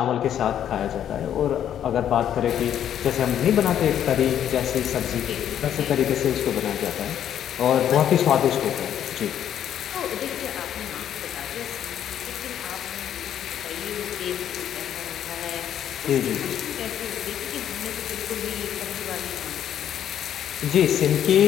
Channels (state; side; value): quieter; right; 10.1 dB